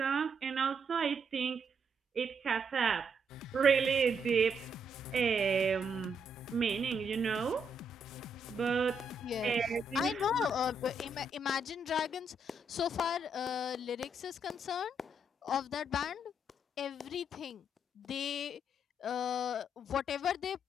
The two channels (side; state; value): both; normal; correlation 0.76